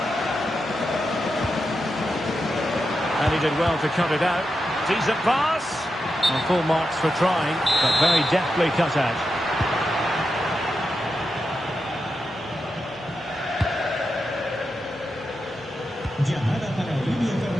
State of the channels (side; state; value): both; normal; correlation 0.88